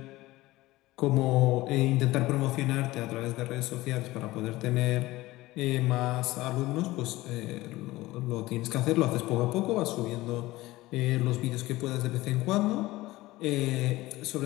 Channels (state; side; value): quieter; right; 18.4 dB